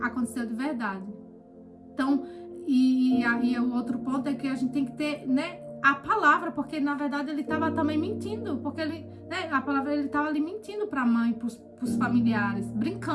aconteceu de verdade. Então, e aí o outro ponto é que a gente tem que ter, né, a palavra, porque na verdade ele estava também mentindo, porque ele, né, a palavra, ele estava ali mentindo para a mãe, para os familiares,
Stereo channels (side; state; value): both; identical; correlation 1.00